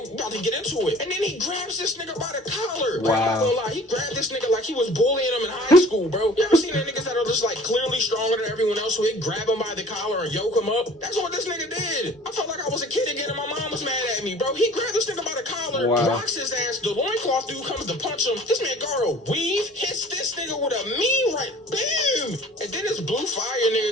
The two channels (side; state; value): both; normal; correlation 0.48